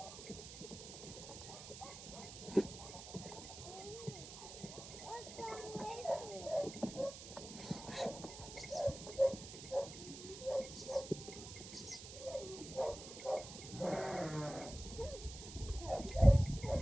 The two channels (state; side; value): noise; right; hiss, 12 dB below the sound